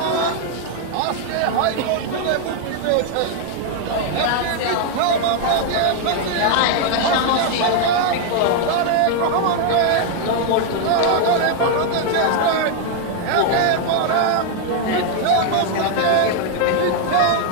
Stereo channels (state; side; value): different; both; correlation 0.00